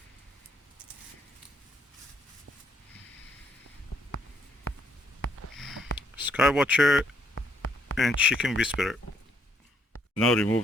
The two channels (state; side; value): normal; both; correlation 0.71